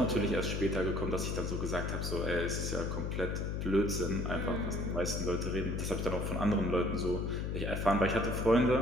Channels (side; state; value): left; noise; hum, 2 dB below the sound